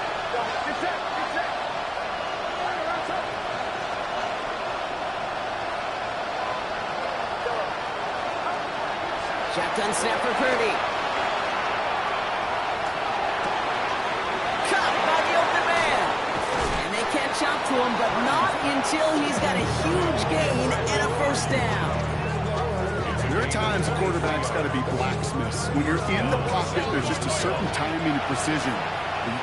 Shotgun snap for Purdy. Caught by the open man. And they catch up to him, but not until he's got a huge gain and a first down. There are times a quarterback's got to be blacksmiths. When you're in the pocket, there's just a certain timing and precision. When you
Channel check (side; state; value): both; identical; correlation 1.00